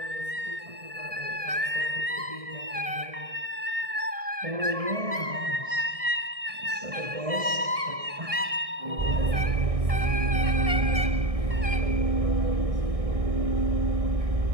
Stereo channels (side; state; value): left; late; 1.6 ms